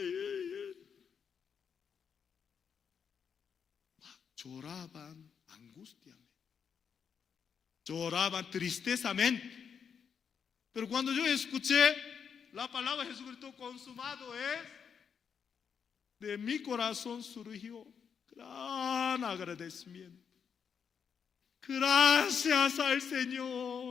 Lloraban angustiamente, lloraban tristezamente. Pero cuando yo escuché la palabra de Jesucristo, consumado es, de mi corazón surgió gran agradecimiento. Gracias al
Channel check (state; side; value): quieter; right; 7.0 dB